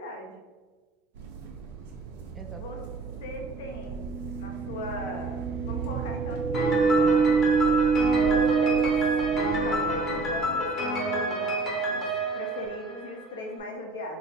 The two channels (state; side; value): quieter; left; 3.5 dB